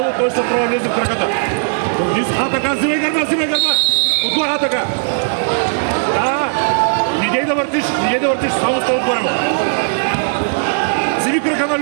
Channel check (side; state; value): left; silent; 63 dB below the other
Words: той ще трябва да влезе в краката. Така, взимай гърба! Отгоре, така! Да! Не дей да въртиш, само стой отгоре му. Взими крака на